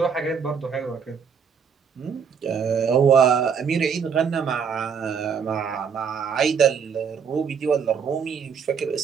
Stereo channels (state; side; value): quieter; left; 6.7 dB